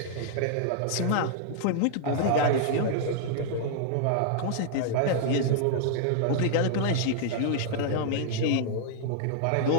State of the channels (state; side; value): different; both; correlation -0.01